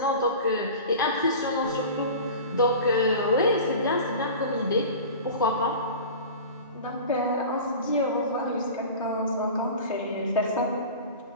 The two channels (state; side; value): inverted; both; correlation -0.35